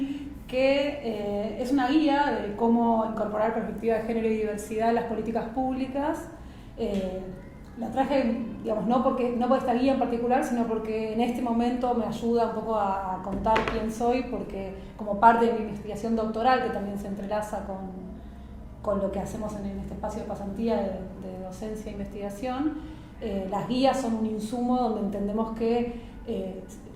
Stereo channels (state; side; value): identical; both; correlation 1.00